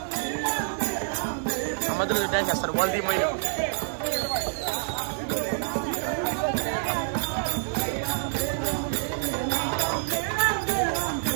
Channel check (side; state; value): left; silent; digital silence